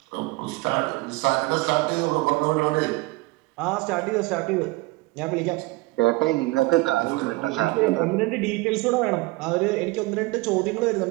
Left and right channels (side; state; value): left; quieter; 22.1 dB